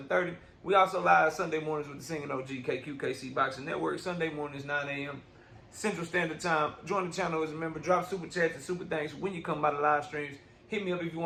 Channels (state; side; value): identical; both; correlation 1.00